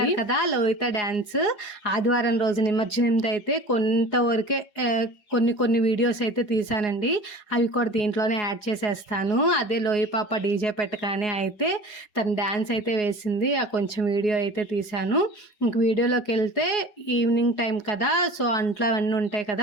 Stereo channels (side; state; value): right; late; 4.8 ms